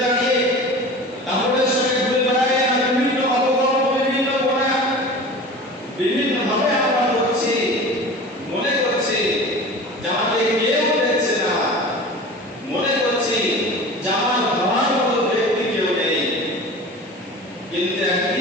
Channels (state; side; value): normal; both; correlation 0.37